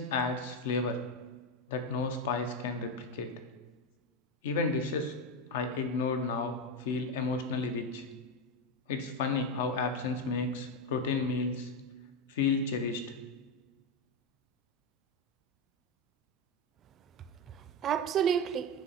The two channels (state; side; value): normal; both; correlation 0.11